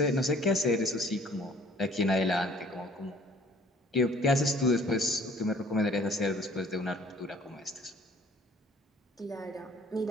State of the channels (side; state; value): both; normal; correlation 0.55